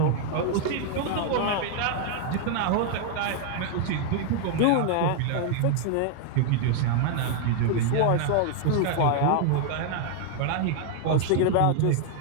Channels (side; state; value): both; different; correlation 0.00